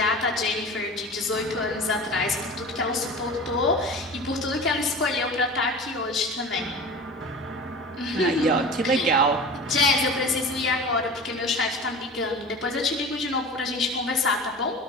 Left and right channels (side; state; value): both; normal; correlation 0.35